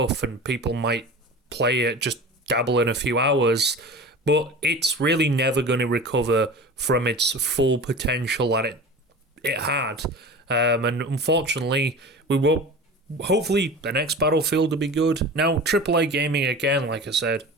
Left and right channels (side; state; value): both; normal; correlation 0.34